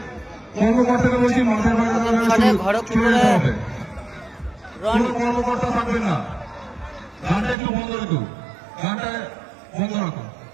কর্মকর্তাকে বলছি মাঠের বাইরে খড়গপুরে কোনো কর্মকর্তা থাকবে না। গানটা একটু বন্ধ রাখো, গানটা বন্ধ রাখো।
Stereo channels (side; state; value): left; drops out; at 7.6 s